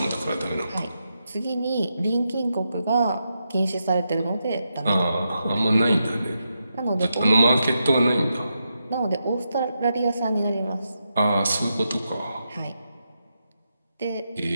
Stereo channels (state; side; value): inverted; both; correlation -0.85